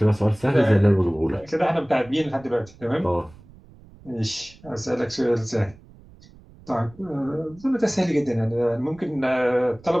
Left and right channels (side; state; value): right; noise; rumble, 24 dB below the sound